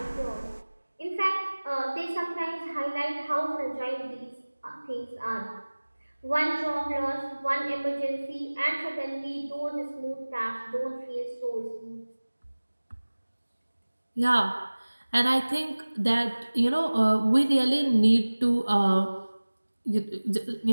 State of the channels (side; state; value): both; inverted; correlation -1.00